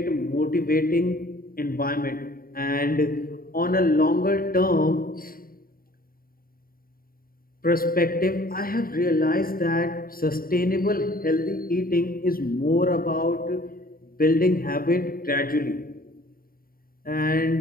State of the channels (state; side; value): late; right; 0.42 ms